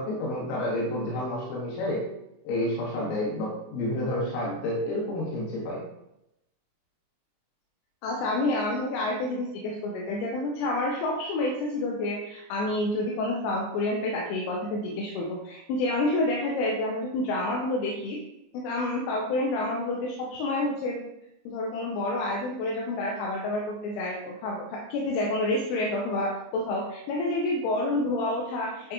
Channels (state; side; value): late; right; 24 ms